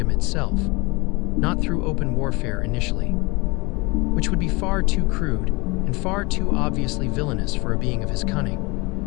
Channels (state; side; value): quieter; right; 26.0 dB